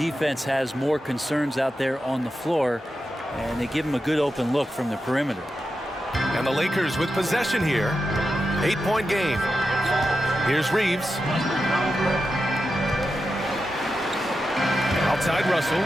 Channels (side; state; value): both; normal; correlation 0.90